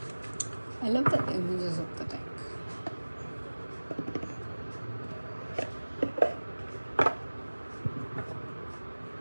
I love the images of the deck.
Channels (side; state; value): both; inverted; correlation -1.00